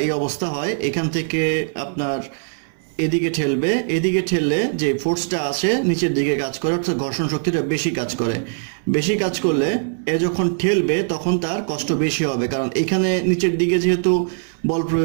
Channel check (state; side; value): silent; left; 64 dB below the other